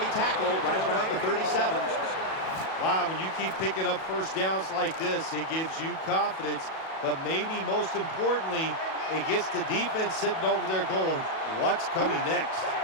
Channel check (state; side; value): late; right; 37 ms